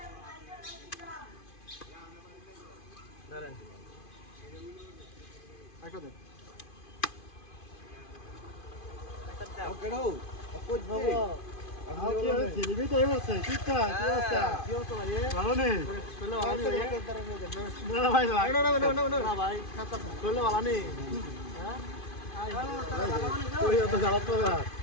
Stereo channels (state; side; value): late; right; 2.5 ms